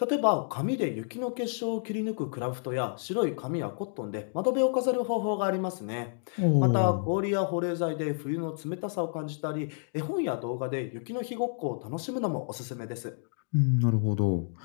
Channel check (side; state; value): right; silent; digital silence